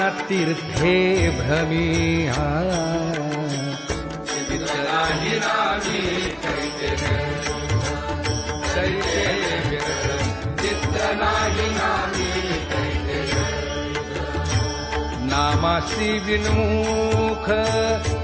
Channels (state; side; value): identical; both; correlation 1.00